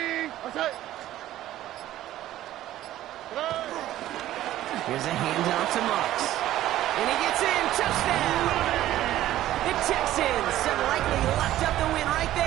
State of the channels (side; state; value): left; quieter; 13.8 dB